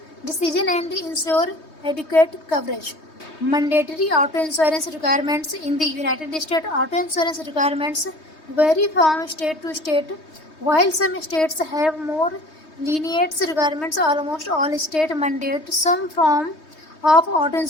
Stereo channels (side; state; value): right; late; 3.2 ms